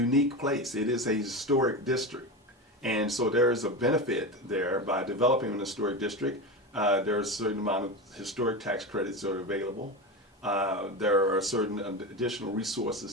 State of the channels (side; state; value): both; normal; correlation 0.22